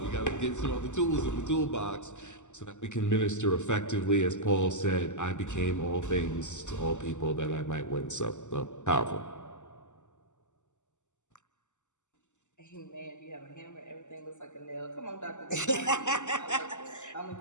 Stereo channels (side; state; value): right; late; 0.84 ms